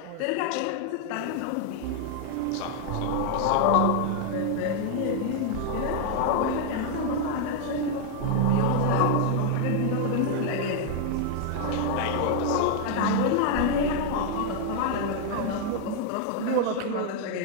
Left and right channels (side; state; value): both; different; correlation 0.00